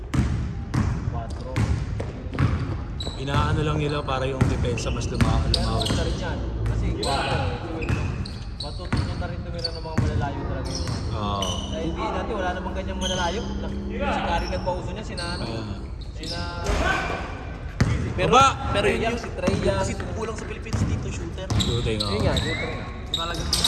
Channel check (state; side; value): identical; both; correlation 1.00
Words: 4. Inaano lang nila para yung depensa mas lumawit. Isa rin yan. Kasi 4 matutunan na rin tumira ng mga malalayo talaga yun. Oo. Dahil hindi natin, wala namang ganyang malalayo. Si Kari nagpauso niya, sina Pero, Aba! pero yun yung si Trey Young. kasi kulang sa Philippines dito, shooter. Shooting, oo. Yun nga, shooter nga. Talagang